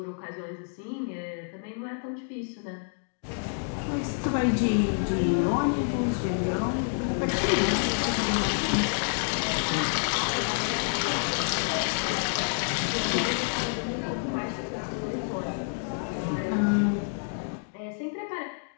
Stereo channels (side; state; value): right; silent; 59 dB below the other